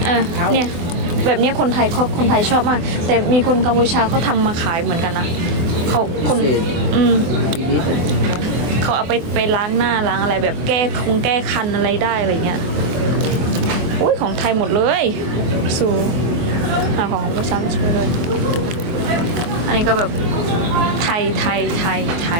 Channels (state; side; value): late; left; 24 ms